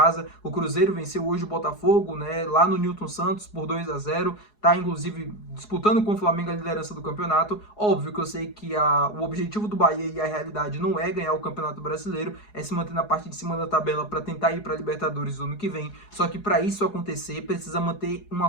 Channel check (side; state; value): right; late; 4.7 ms